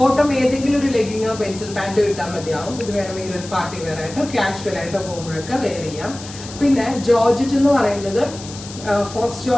ഏതെങ്കിലും ഒരു ലെഗിങ്ങോ പെൻസിൽ പാൻറ്റോ ഇട്ടാൽ മതിയാവും. ഇത് വേണമെങ്കിൽ ഒരു പാർട്ടി വെയർ ആയിട്ടോ കാഷ്വൽ ആയിട്ടോ പോകുമ്പോഴൊക്കെ വെയർ ചെയ്യാം. പിന്നെ ജോർജറ്റ് എന്ന് പറയുന്നത് ഫോക്സ്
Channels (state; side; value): noise; left; hiss, 14 dB below the sound